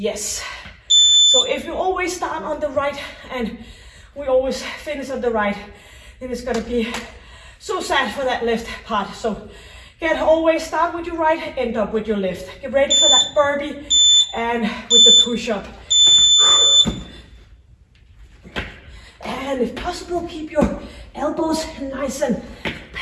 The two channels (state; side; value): identical; both; correlation 1.00